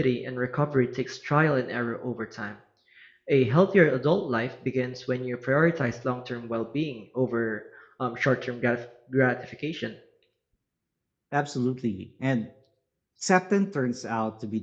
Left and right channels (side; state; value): both; identical; correlation 1.00